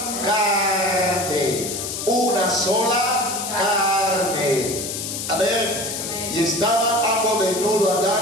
carne. Una sola carne. Amén. Y estaban ambos desnudos,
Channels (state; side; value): noise; left; hiss, 5 dB below the sound